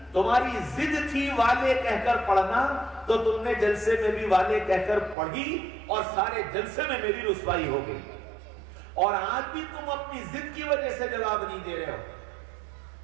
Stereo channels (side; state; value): left; drops out; at 5.2 s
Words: تمہاری ضد تھی والے کہہ کر پڑھنا، تو تم نے جلسے میں بھی والے کہہ کر پڑھی اور سارے جلسے میں میری رسوائی ہو گئی، اور آج بھی تم اپنی ضد کی وجہ سے جواب نہیں دے رہے ہو۔